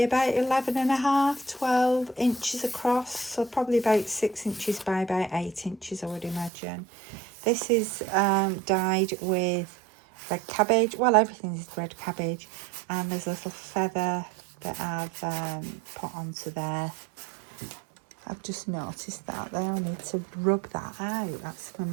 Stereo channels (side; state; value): left; drops out; at 6.5 s